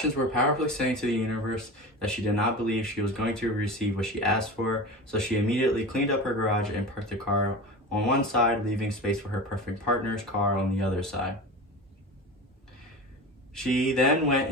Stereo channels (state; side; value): normal; both; correlation 0.30